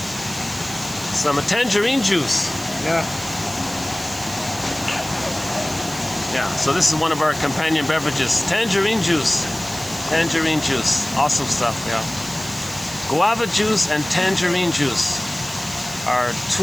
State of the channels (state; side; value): noise; right; hiss, 13 dB below the sound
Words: tangerine juice. Yeah. Yeah, so this is one of our companion beverages. Tangerine juice. Tangerine juice. Awesome stuff, yeah. Guava juice and tangerine juice are